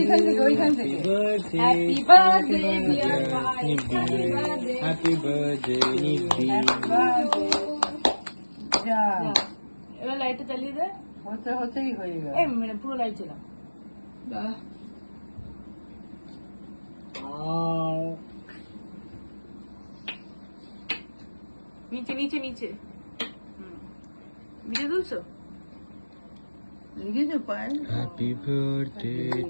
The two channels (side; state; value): both; inverted; correlation -1.00